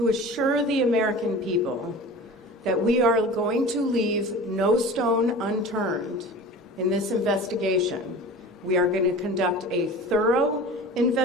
assure the American people that we are going to leave no stone unturned in this investigation. We are going to conduct a thorough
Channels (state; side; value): normal; both; correlation 0.37